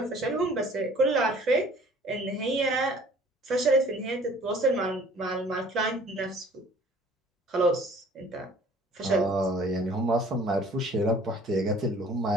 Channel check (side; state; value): both; normal; correlation 0.52